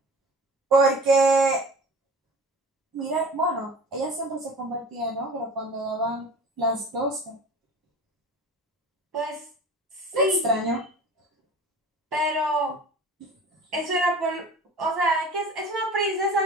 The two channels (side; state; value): both; normal; correlation 0.40